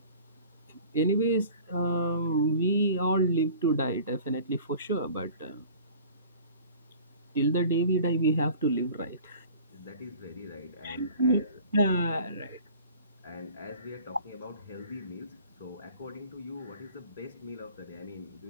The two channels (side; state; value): both; inverted; correlation -0.46